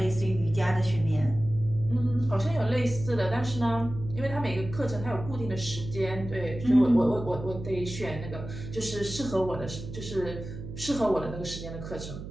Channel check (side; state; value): right; noise; hum, 10 dB below the sound